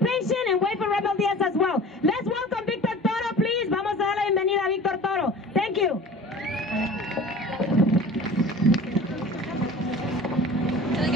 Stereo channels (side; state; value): both; normal; correlation 0.41